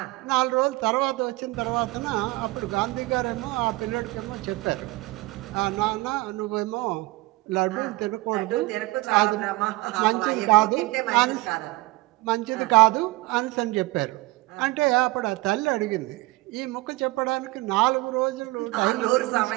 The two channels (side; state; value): left; quieter; 20.9 dB